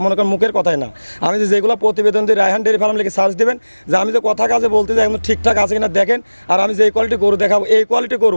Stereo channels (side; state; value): both; inverted; correlation -1.00